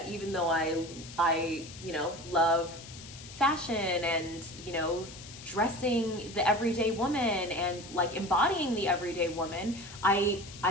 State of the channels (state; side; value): noise; left; hiss, 15 dB below the sound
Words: even though I, you know, love fashion and, you know, dressing the everyday woman and like embodying the everyday woman, I